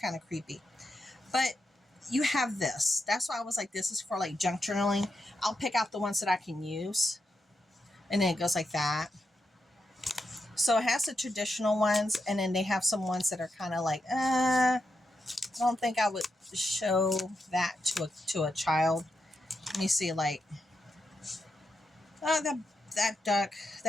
of creepy. But you have this. That's why I was like, this is for like junk journaling. I'll pick out the ones that I can use. And then it goes like that. So it has the traditional ones. And then they have some ones that are kind of like, I don't think I would show that to a child. Let me see, like, oh, that duck,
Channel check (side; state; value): both; normal; correlation 0.85